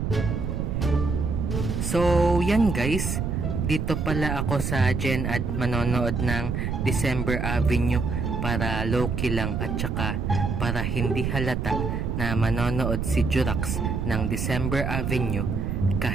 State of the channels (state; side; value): noise; right; rumble, 1 dB below the sound